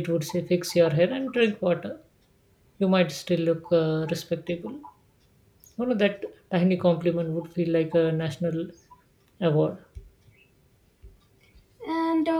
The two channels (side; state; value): both; identical; correlation 1.00